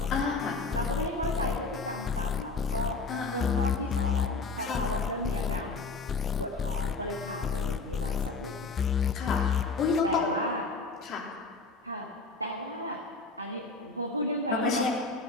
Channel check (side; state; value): right; quieter; 4.0 dB